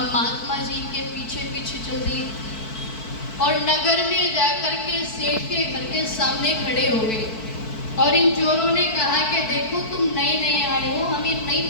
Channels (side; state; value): right; late; 4.5 ms